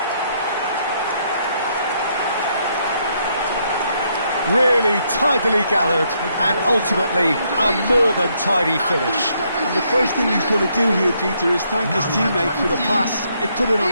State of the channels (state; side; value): inverted; both; correlation -0.73